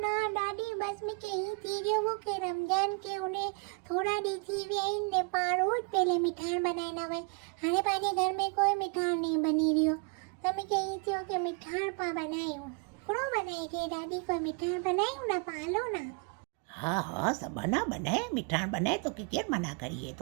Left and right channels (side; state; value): left; quieter; 35.0 dB